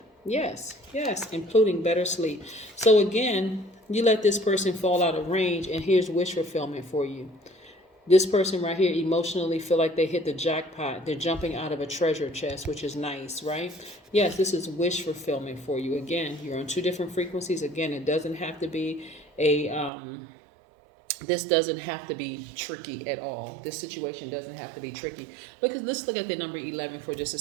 Yes, yes, including better sleep. So again, you let this person fall out of range, and here's wish fulfillment for you. This person right here emotionally feel like they hit the jackpot. They're jumping out of a treasure chest, which is nice, right? Yes, this is wish fulfillment for you. Again, you're on 2 different frequencies. Again, it doesn't have to be this doesn't have to be tricky at all. This situation doesn't have to be tricky. Let's look at the number 11 for just a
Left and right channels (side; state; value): left; drops out; at 19.9 s